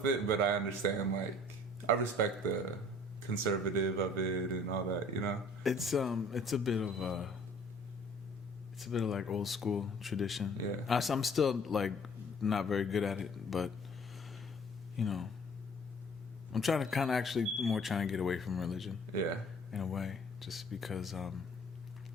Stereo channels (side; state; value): both; normal; correlation 0.53